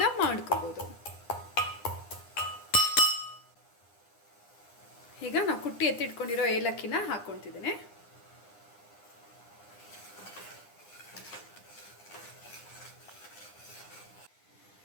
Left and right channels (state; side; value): late; right; 9.8 ms